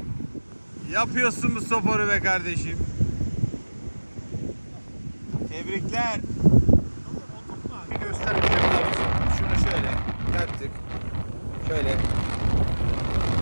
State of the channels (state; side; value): inverted; both; correlation -1.00